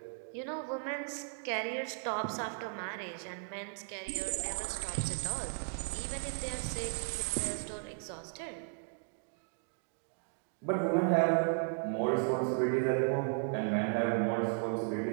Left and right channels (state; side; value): silent; left; 54 dB below the other